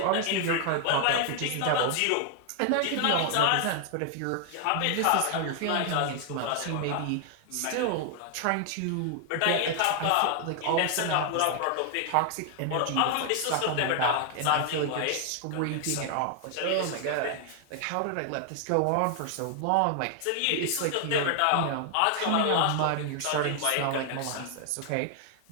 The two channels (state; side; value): different; both; correlation 0.00